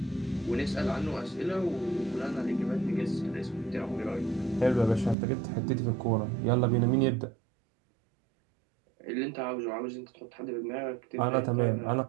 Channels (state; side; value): drops out; left; at 5.2 s